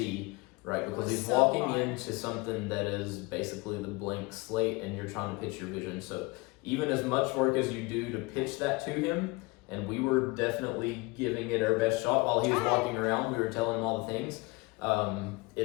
right? Because he's walking into something that is basically the blank slate and you're trying to pitch your vision. So even as much work as you do to pitch that to him, and we were definitely giving it our best shot while he was walking around, we were telling him all the things.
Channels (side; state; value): right; quieter; 25.4 dB